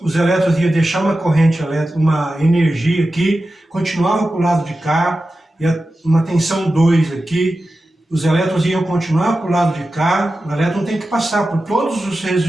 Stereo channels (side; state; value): both; normal; correlation 0.93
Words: os elétrons iam deixar uma corrente elétrica, uma energia aqui, continuava para o lado de cá, ia uma tensão 2 aqui, os elétrons iam continuar para o lado de cá, o elétron tem que passar por todos os